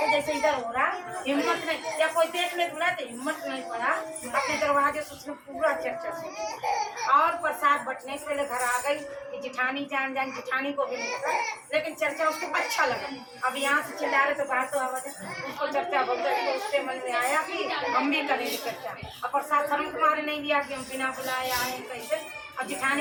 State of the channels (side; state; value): both; identical; correlation 1.00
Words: जैसे इधर हो रहा, हिम्मत नहीं, या कोई देख ले बुला तो हिम्मत नहीं पड़ा, अपने दरवाजे से उसने पूरा चर्चा सुनी और प्रसाद बटने से पहले घर आ गई कि जिठानी जान जिठानी को भी नहीं पता, लेकिन चर्चा उसको अच्छा लगा। अब यहाँ से चिल्ला रहे तो बाहर तो आवाज उसको चर्चा बोलते, तो उसके मन में आया कि हम भी करेंगे चर्चा, और प्रसाद शर्म तुम्हारे नहीं दिया कि हम बिना बुलाए आए कैसे। अब जिठानी